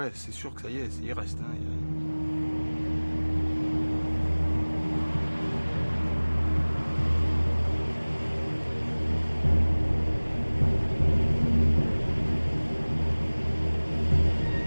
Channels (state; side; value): inverted; both; correlation -1.00